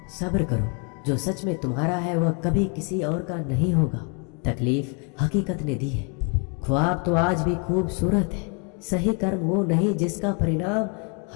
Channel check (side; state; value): right; quieter; 36.5 dB